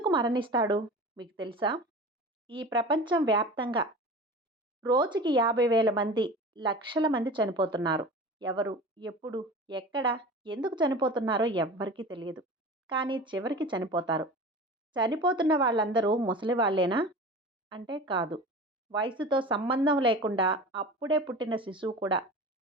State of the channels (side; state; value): both; normal; correlation 0.35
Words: మరణిస్తాడు మీకు తెలుసా? ఈ ప్రపంచం వ్యాప్తంగా రోజుకి 50,000 మంది, లక్షల మంది చనిపోతున్నారు. ఎవరు, ఎప్పుడు, ఎక్కడ, ఎందుకు చనిపోతున్నారో ఎవ్వరికీ తెలియదు. కానీ చివరికి చనిపోతారు. చనిపోతున్న వాళ్ళందరూ ముసలి వాళ్ళేనా? అంటే కాదు. వయసుతో సంబంధం లేకుండా అప్పుడే పుట్టిన శిశువు కూడా